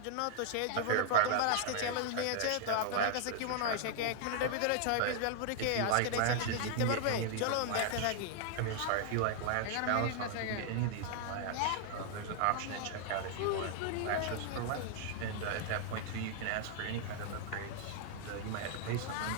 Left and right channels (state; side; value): different; both; correlation -0.01